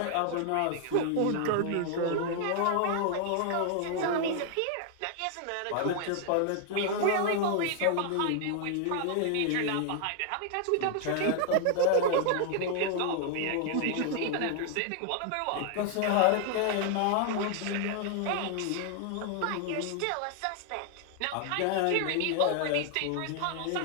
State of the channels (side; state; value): both; different; correlation 0.00